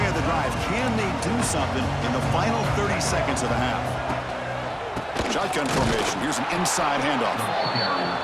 of the drive. Can they do something in the final 30 seconds of the half? Shotgun formation. Here's an inside handoff.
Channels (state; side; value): identical; both; correlation 1.00